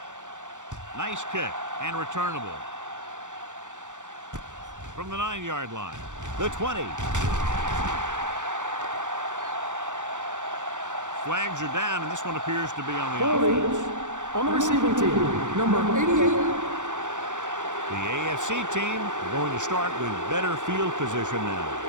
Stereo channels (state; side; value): late; left; 0.85 ms